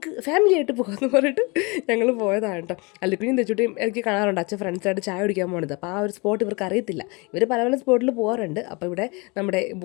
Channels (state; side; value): quieter; right; 28.1 dB